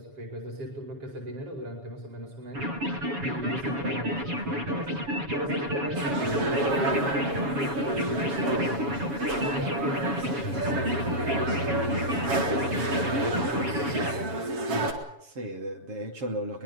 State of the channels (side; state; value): left; late; 7.1 ms